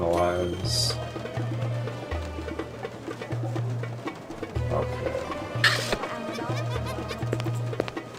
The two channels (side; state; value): both; identical; correlation 1.00